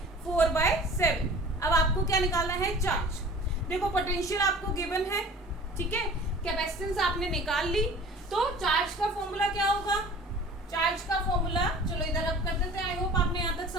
4/7। अब आपको क्या निकालना है, चार्ज। देखो पोटेंशियल आपको गिवन है, ठीक है, कैपेसिटेंस आपने निकाल ली, तो चार्ज का फॉर्मूला क्या होगा, चार्ज का फॉर्मूला चलो इधर अब कर देते हैं। आई होप आपने यहाँ तक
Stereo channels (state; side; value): normal; both; correlation 0.44